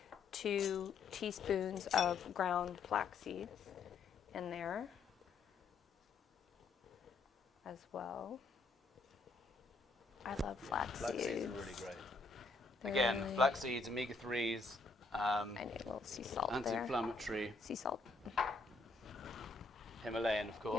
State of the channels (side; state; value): right; quieter; 4.0 dB